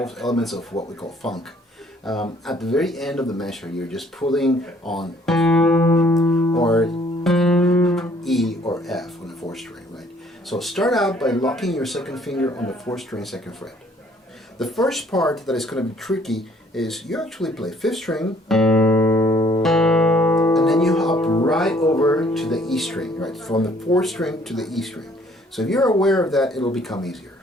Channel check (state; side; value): normal; both; correlation 0.61